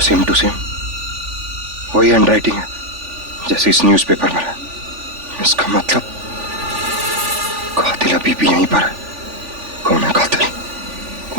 सेम टू सेम वही हैंडराइटिंग है जैसे इस न्यूज़पेपर में है। इसका मतलब कातिल अभी भी यहीं पर है। कौन है कातिल?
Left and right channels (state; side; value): late; left; 3.4 ms